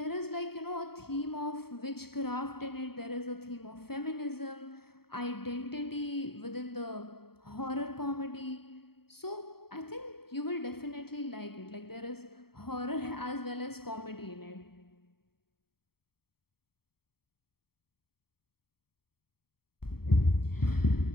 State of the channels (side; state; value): right; late; 0.95 ms